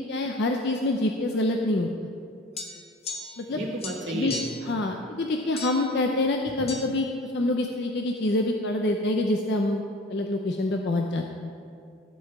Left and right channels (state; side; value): normal; both; correlation 0.43